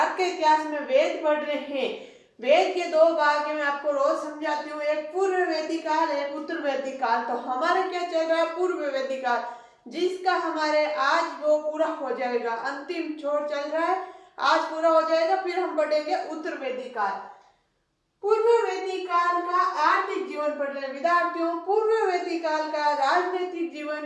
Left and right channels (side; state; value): both; identical; correlation 1.00